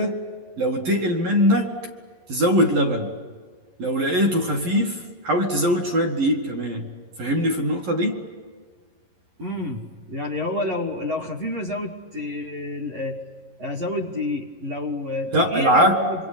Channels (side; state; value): left; late; 11 ms